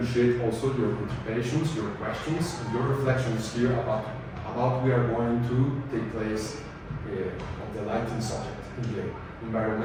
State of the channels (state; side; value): identical; both; correlation 1.00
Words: also your participations, your questions, and your reflections here about we are going to take place of the lighting subject in the